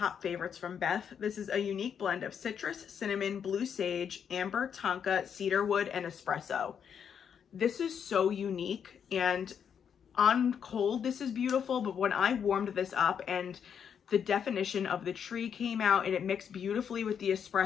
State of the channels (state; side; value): quieter; right; 7.7 dB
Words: favorites from Beth. This is a unique blend of citrus, cinnamon, blue sage, amber, tonka, cedar wood, and espresso. This is so unique, and on cold this is beautiful, but when I warmed this up and the definition of the tree came out and it mixed beautifully with the